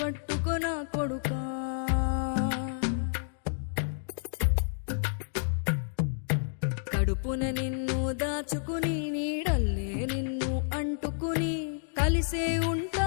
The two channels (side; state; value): right; silent; digital silence